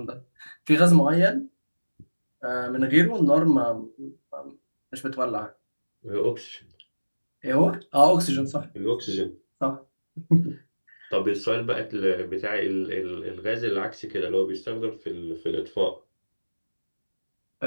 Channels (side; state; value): both; inverted; correlation -1.00